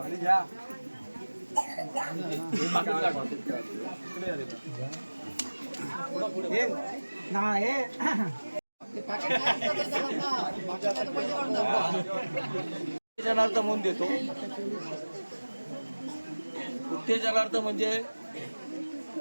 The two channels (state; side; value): inverted; both; correlation -1.00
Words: उत्तेजनार्थ म्हणून देतो. उत्तेजनार्थ म्हणजे